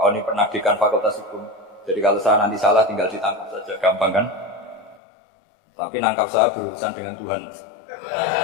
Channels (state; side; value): drops out; right; at 5.0 s